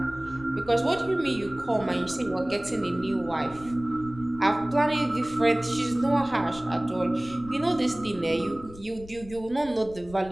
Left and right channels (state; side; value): noise; left; rumble, 18 dB below the sound